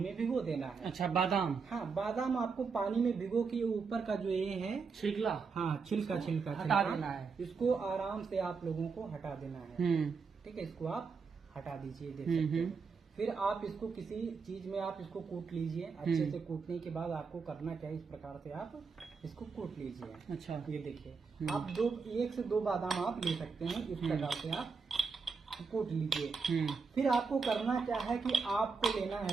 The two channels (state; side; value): quieter; left; 5.1 dB